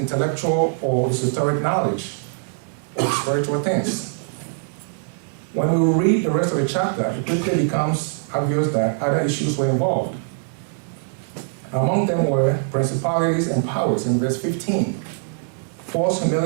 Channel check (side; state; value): left; silent; 64 dB below the other